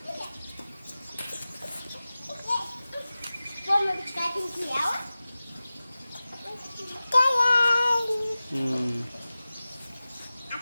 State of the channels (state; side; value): inverted; both; correlation -0.97